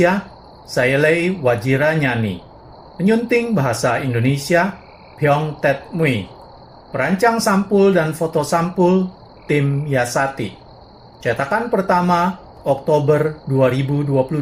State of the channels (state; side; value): identical; both; correlation 1.00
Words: Sayalei Wajira Nyani. Penyunting bahasa Indonesia Pyong Tet Mui. Perancang sampul dan foto sampul tim Yasati. Cetakan pertama Oktober 2022.